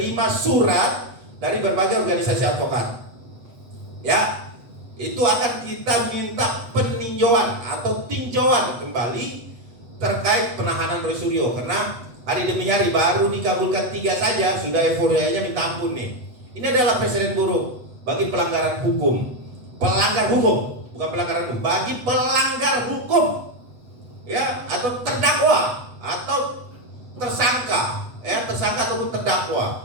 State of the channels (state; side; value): late; left; 8.1 ms